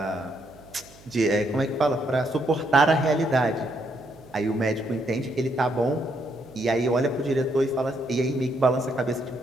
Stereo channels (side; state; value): right; noise; hum, 24 dB below the sound